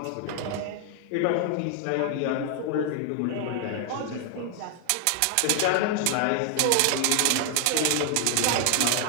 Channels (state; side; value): different; both; correlation 0.00